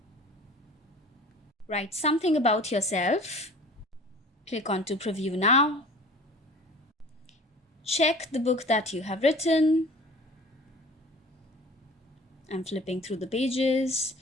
Write something about yourself. Click on to preview now. Check the book that you have written. I'm flipping through the pages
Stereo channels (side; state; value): both; normal; correlation 0.44